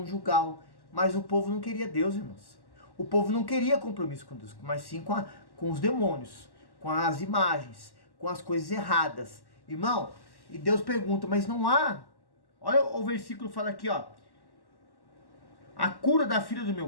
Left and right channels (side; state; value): right; late; 1.1 ms